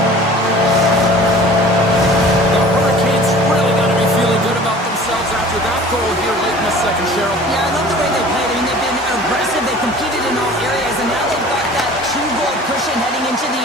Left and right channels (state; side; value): normal; both; correlation 0.45